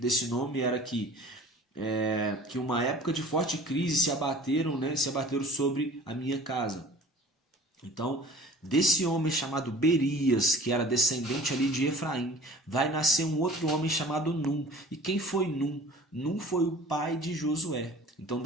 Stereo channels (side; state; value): both; normal; correlation 0.44